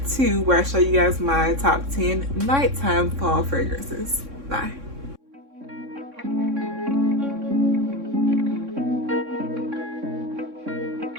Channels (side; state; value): left; late; 3.6 ms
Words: 2 where I show you guys my top 10 nighttime fall fragrances. Bye.